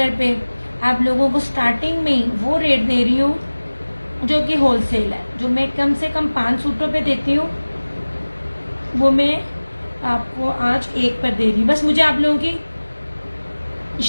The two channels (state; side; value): inverted; both; correlation -1.00